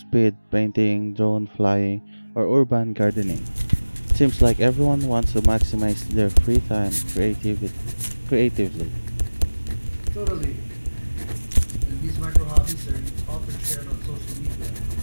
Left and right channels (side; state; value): both; inverted; correlation -1.00